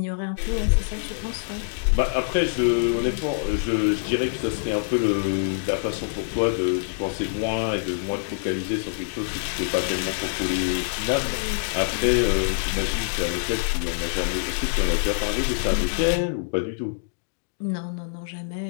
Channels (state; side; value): silent; right; digital silence